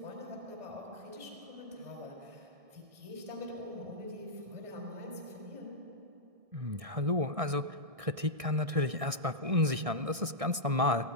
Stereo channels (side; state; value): left; late; 1.6 ms